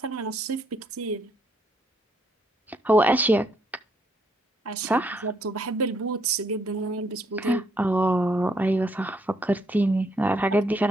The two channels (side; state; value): both; normal; correlation 0.71